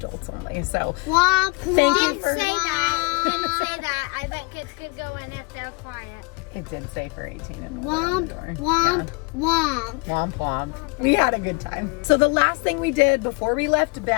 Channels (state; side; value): quieter; right; 30.2 dB